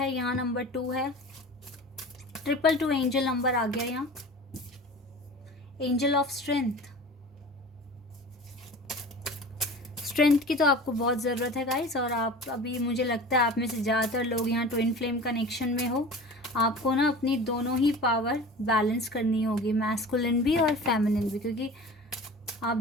यहाँ नंबर 2 है, 222 एंजल नंबर आ गया यहाँ, एंजल ऑफ स्ट्रेंथ। स्ट्रेंथ की तो आपको बहुत ज़रूरत है गाइस, और आप अभी, मुझे लगता है आप में से ज़्यादातर लोग यहाँ ट्विन फ्लेम कनेक्शन में हो। आपको ना अपनी दोनों ही पावर बैलेंस करनी होगी, मैस्कुलिन भी और फेमिनिन भी, क्योंकि आप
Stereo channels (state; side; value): normal; both; correlation 0.38